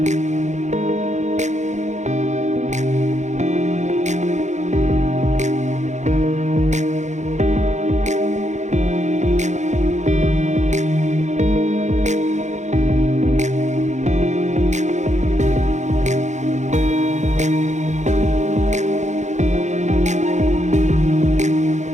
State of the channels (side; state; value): left; late; 0.34 ms